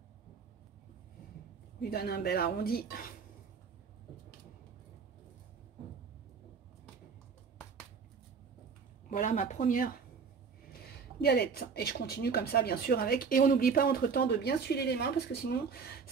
Lui donne un bel arrondi. Voilà ma première galette. Et je continue comme ça, bien sûr, avec. Et on n'oublie pas entre-temps de bien s'huiler les mains, parce que sinon,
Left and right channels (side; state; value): left; quieter; 5.7 dB